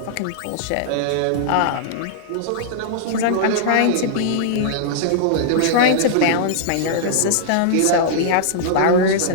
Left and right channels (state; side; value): different; both; correlation -0.01